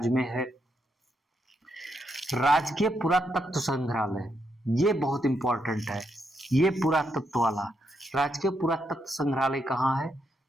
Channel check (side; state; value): both; normal; correlation 0.80